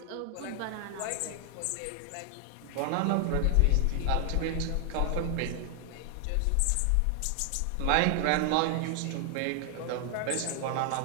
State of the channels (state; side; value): different; both; correlation 0.00